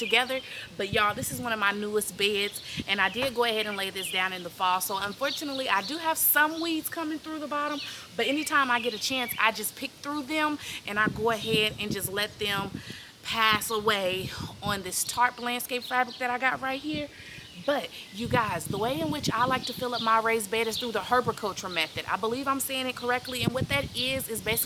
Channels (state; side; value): identical; both; correlation 1.00